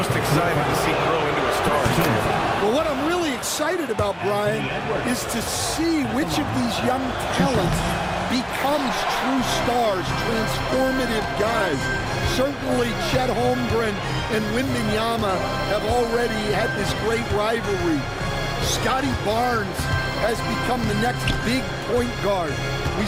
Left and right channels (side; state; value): both; identical; correlation 1.00